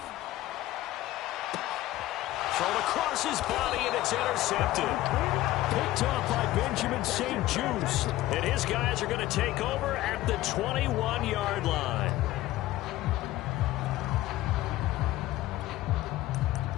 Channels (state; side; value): quieter; right; 16.0 dB